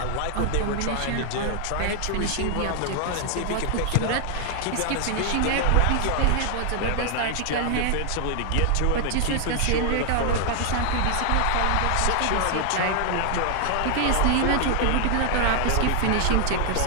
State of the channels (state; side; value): different; both; correlation 0.00